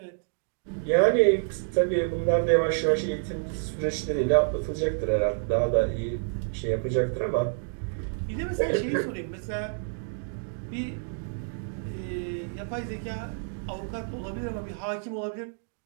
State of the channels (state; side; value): silent; left; digital silence